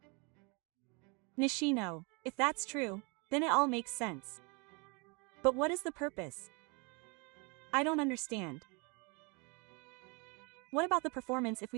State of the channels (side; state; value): left; quieter; 31.0 dB